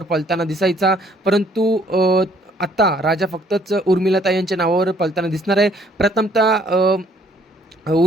पळताना दिसायचा, परंतु आता राजा फक्तच उर्मिलाताई यांच्या नावावर पळताना दिसणार आहे. प्रथमतः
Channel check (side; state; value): both; normal; correlation 0.63